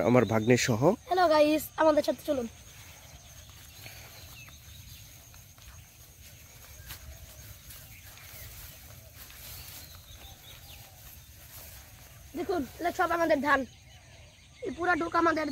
আমার ভাগ্নের সহ। হ্যালো গাইস, আমাদের সাথে চলুন। দেখুন, এটা সব আমাদের ধান, এই পুরা ডুক আমাদের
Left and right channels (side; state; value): both; identical; correlation 1.00